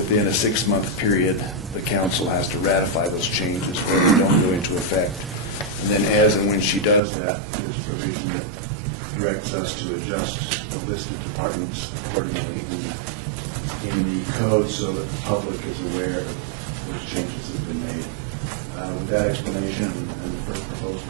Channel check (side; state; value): left; drops out; at 7.0 s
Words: a 6-month period, the council has to ratify those changes or they don't go into effect. And then as and when she does that, there's a provision that directs us to adjust the list of departments accordingly in the code so that the public is aware of those changes that have been made. With that explanation and the proposed